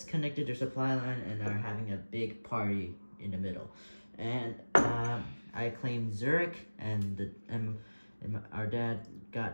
connected their supply line and are having a big party in the middle. And I claimed Zurich, and our dad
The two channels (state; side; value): inverted; both; correlation -1.00